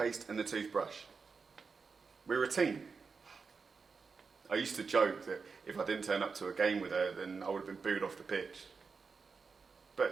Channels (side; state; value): left; quieter; 5.0 dB